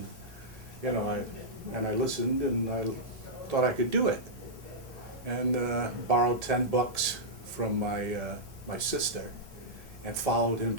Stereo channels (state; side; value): late; right; 1.5 ms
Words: I listened, and I thought I could do it, and borrowed $10 from my sister, and followed him